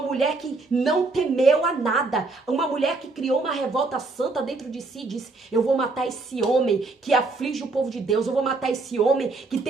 que não temeu a nada, uma mulher que criou uma revolta santa dentro de si e disse, eu vou matar esse homem que aflige o povo de Deus, eu vou matar esse homem que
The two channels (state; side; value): quieter; left; 3.5 dB